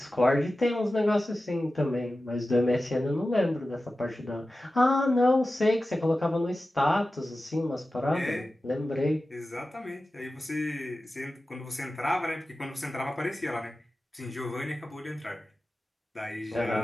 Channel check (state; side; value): normal; both; correlation 0.94